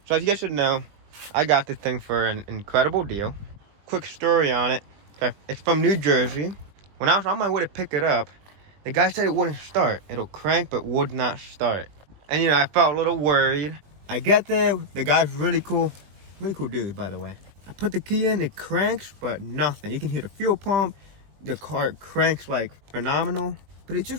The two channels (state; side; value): late; left; 20 ms